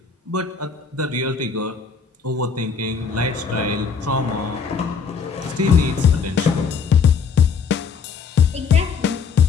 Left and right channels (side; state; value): right; quieter; 5.6 dB